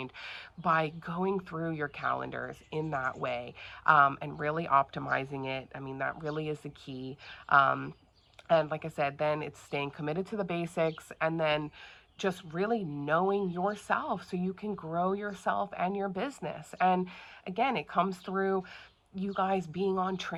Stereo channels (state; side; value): identical; both; correlation 1.00